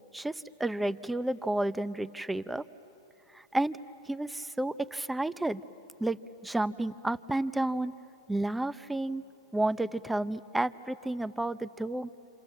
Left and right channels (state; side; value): normal; both; correlation 0.95